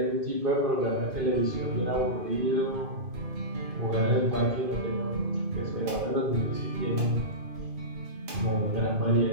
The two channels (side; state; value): left; late; 2.5 ms